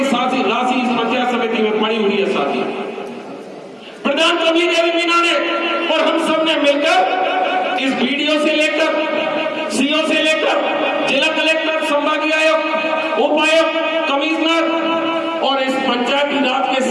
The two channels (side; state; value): both; identical; correlation 1.00